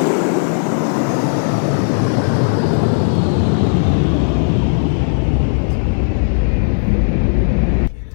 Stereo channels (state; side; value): silent; right; 69 dB below the other